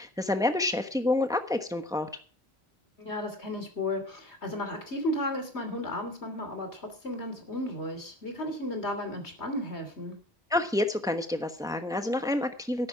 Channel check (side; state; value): both; normal; correlation 0.47